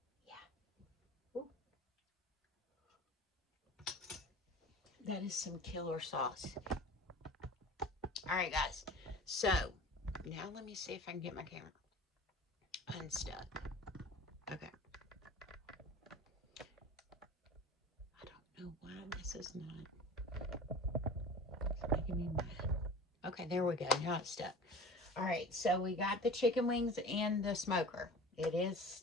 Yeah. Ooh. That is some killer sauce. All right, guys. So, now let me see if I can get my camera unstuck. Okay. I don't know why this is not. It's making me mad. Okay, there we go. Now it's stuck. All right, so we got the chicken wings and the smoker. It is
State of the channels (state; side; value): normal; both; correlation 0.38